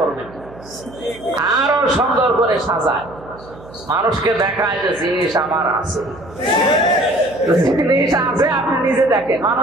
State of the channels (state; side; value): noise; right; hum, 20 dB below the sound